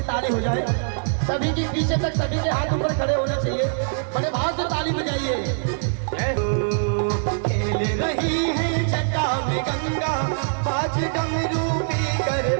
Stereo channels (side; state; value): left; silent; 63 dB below the other